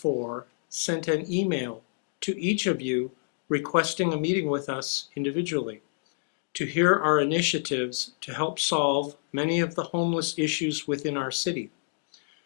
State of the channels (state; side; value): silent; right; digital silence